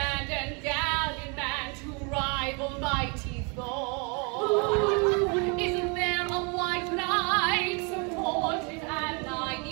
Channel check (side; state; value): left; quieter; 33.5 dB